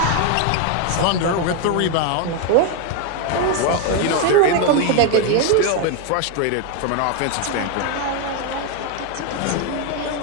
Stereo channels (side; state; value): both; different; correlation 0.01